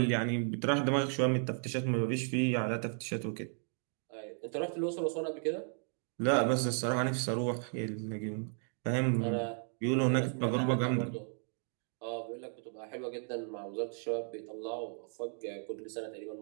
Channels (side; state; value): left; silent; 55 dB below the other